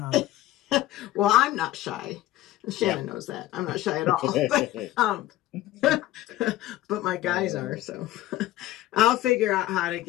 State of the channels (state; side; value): quieter; right; 15.3 dB